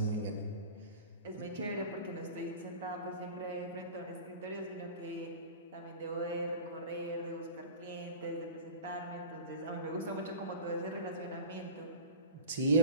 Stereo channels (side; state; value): both; inverted; correlation -0.35